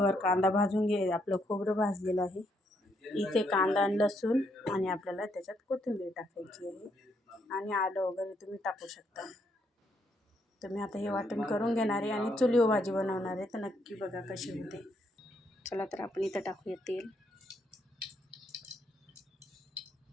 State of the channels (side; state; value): both; normal; correlation 0.74